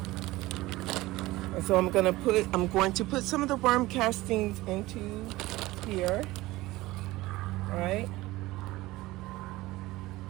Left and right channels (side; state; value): left; quieter; 18.8 dB